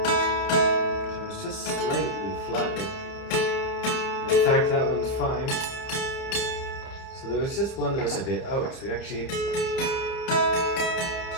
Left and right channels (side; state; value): right; late; 30 ms